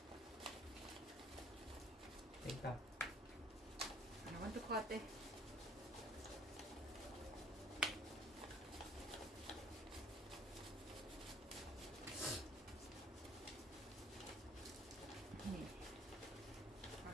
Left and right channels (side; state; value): both; normal; correlation 0.56